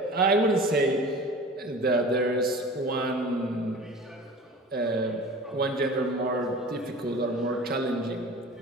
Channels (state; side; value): normal; both; correlation 0.39